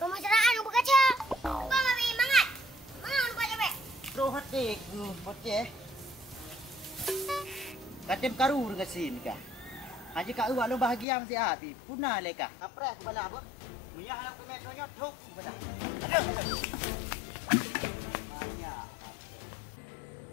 berkaca. Bang ambil mangat. Mangat lupa cepet. Roh hati ku bocah. Katem karu dengan sin kah. Haji kak uak lo bahagia mesti api. Punah leka. Apres bala apa? Mia halang ke metronya tok bala. Aduh. Banyak.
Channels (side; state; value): right; drops out; at 11.1 s